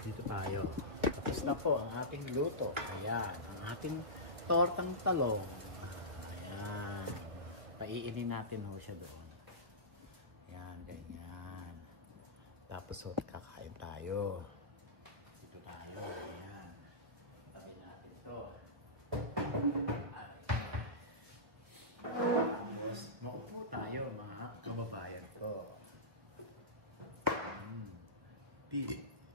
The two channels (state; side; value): late; left; 1.4 ms